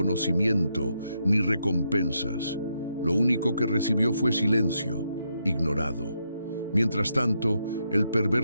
ni recompensas. Lo único que recibió fue silencio, ignorado. Mientras tanto, el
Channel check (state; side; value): inverted; both; correlation -0.80